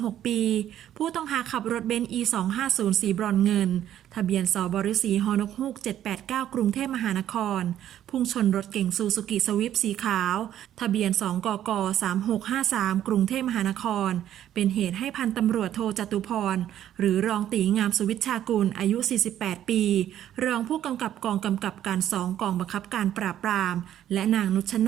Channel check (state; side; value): quieter; left; 11.4 dB